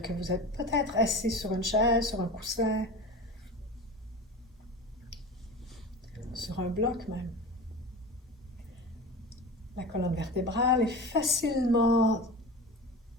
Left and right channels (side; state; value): both; normal; correlation 0.31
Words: que vous êtes peut-être assis sur une chaise, sur un coussin, sur un bloc même. La colonne vertébrale est facilement